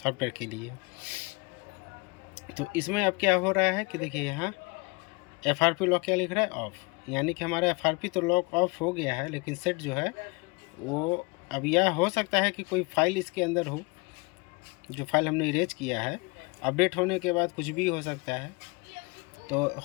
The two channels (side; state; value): right; quieter; 27.9 dB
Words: के लिए। तो इसमें अब क्या हो रहा है कि देखिए यहाँ एफआरपी लॉक क्या लिख रहा है, ऑफ, यानी कि हमारा एफआरपी तो लॉक ऑफ हो गया है, लेकिन सेट जो है वो अब यह हो सकता है कि कोई फाइल इसके अंदर हो, जो फाइल हमने इरेज किया है, अपडेट होने के बाद कुछ भी हो सकता है। तो